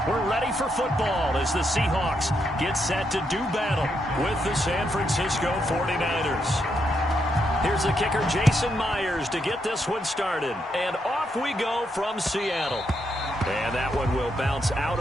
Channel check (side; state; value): both; normal; correlation 0.80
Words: We're ready for football as the Seahawks get set to do battle with the San Francisco 49ers. Here's the kicker, Jason Myers, to get this one started. And off we go from Seattle. And that one will bounce out